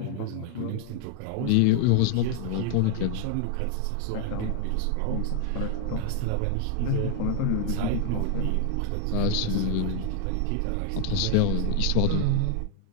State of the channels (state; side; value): different; both; correlation 0.00